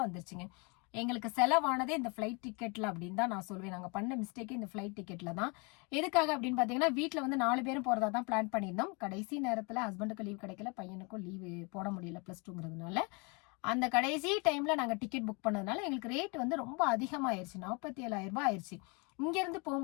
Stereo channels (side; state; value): right; quieter; 31.3 dB